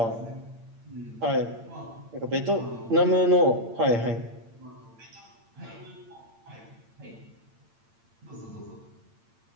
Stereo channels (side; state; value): left; late; 8.8 ms